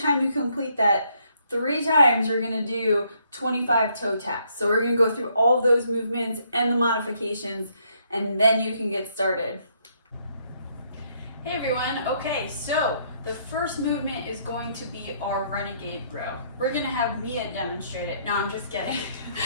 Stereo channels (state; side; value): inverted; both; correlation -0.70